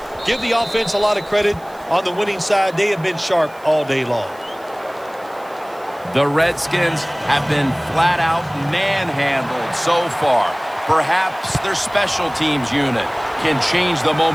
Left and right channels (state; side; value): noise; right; hiss, 27 dB below the sound